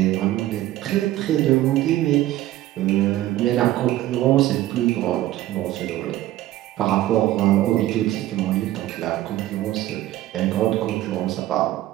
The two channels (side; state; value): left; quieter; 14.8 dB